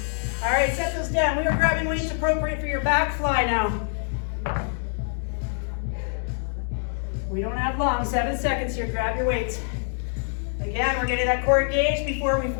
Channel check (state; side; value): silent; right; 62 dB below the other